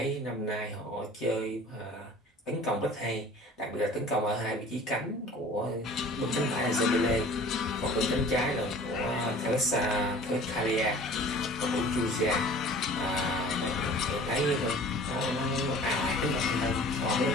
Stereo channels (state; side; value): normal; both; correlation 0.46